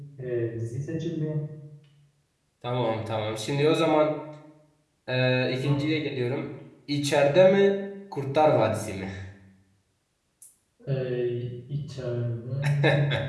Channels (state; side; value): identical; both; correlation 1.00